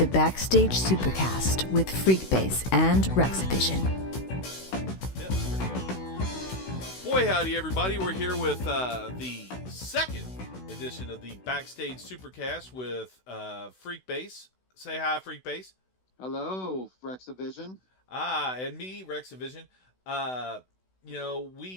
Backstage Supercast with Freekbass and Rexavision. Boy, howdy, everybody. We're here with the second edition of the Backstage Supercast with Freekbass. Say hi, Freekbass. Hello, Rexavision. And me, Rexavision.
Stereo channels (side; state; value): right; late; 16 ms